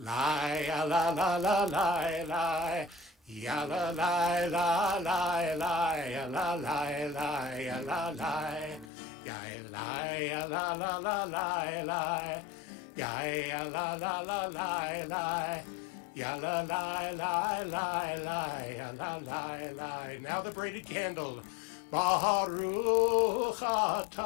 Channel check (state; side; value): drops out; right; at 8.9 s